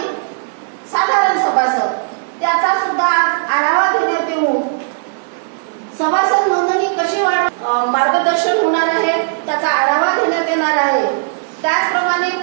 साधारण सभासद. त्याचा सुद्धा आढावा घेण्यात येऊन सभासद नोंदणी कशी मार्गदर्शन होणार आहे त्याचा आढावा घेण्यात येणार आहे. त्याचप्रमाणे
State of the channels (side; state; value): left; silent; 69 dB below the other